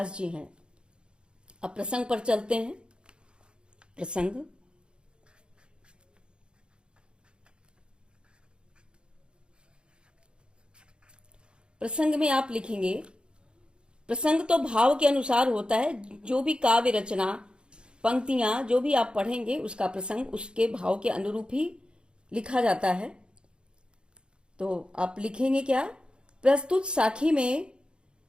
जी हैं। अब प्रसंग पर चलते हैं। प्रसंग, प्रसंग में आप लिखेंगे, प्रसंग तो भाव के अनुसार होता है। जो भी काव्य रचना, पंक्तियां जो भी आप पढ़ेंगे उसका प्रसंग उसके भाव के अनुरूप ही लिखा जाता है। तो आप लिखेंगे क्या? प्रस्तुत साखी में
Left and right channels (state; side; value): late; left; 0.052 ms